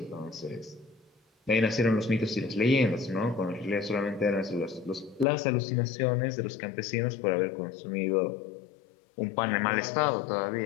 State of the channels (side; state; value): right; drops out; at 5.2 s